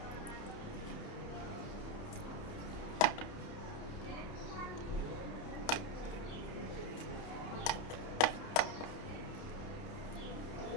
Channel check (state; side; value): late; right; 30 ms